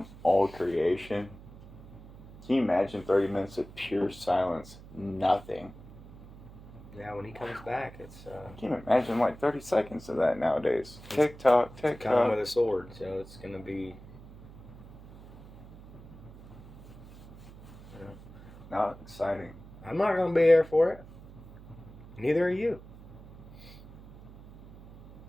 all creation. Can you imagine 30 minutes of pure silence? Nothing. yeah, when he comes back, it's Can you imagine like 30 seconds of that nowadays? Tick tock, tick coming tock. with a sword, so it's gonna be. Not exciting. I'm not gonna be there for it. Neither are you.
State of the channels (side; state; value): right; noise; hum, 18 dB below the sound